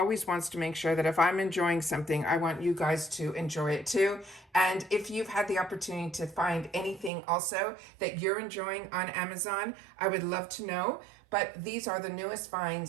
wants to make sure that if I'm enjoying something, I want you guys to enjoy it too. And if you've had the opportunity to find anything also that you're enjoying on Amazon, I would love to know. But these are the newest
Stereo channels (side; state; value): left; drops out; at 7.1 s